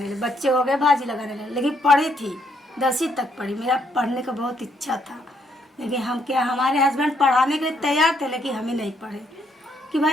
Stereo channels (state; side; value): normal; both; correlation 0.72